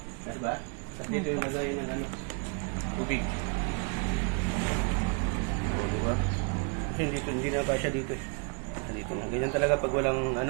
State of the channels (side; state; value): left; quieter; 36.4 dB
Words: Diba? At dito yung lagayan ng tubig. O, diba? Kasi hindi na pa siya dito eh. Dito na. Ganyan talaga pag walang